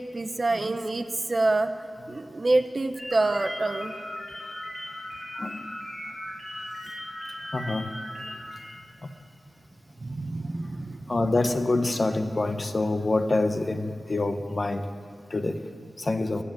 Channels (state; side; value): normal; both; correlation 0.95